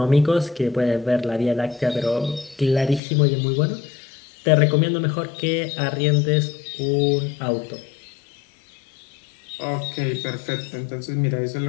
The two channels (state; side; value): drops out; right; at 3.0 s